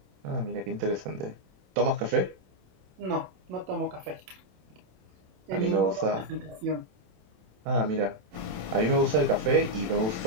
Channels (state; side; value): late; left; 27 ms